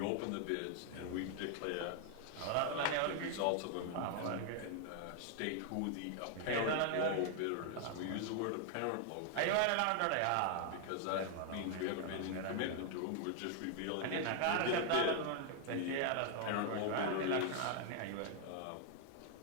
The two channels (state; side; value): different; both; correlation 0.00